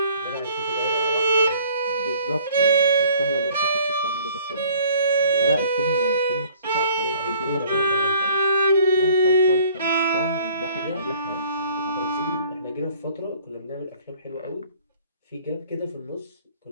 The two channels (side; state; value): both; inverted; correlation -0.55